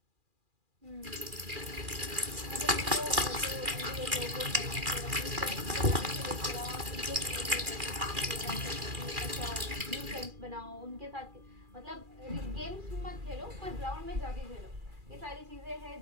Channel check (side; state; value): left; late; 2.4 ms